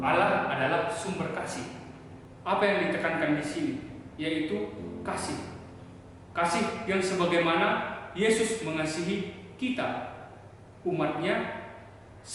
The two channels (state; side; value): identical; both; correlation 1.00